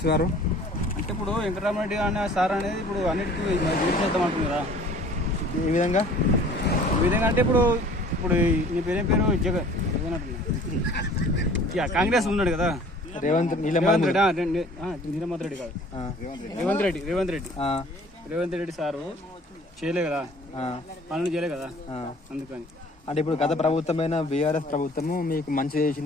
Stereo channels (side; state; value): both; normal; correlation 0.50